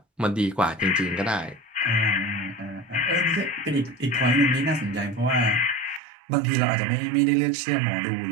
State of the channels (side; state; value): left; drops out; at 6.0 s